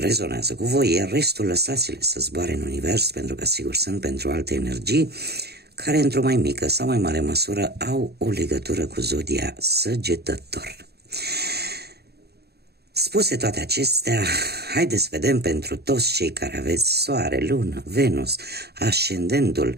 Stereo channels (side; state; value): left; late; 0.47 ms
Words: cu voi, iar restul lăsați-le să zboare în univers, pentru că sigur sunt pentru alte energii care într-o mai mică sau mai mare măsură au o legătură cu zodia Săgetător. Spuse toate acestea, haideți să vedem pentru toți cei care aveți Soare, Lună, Venus,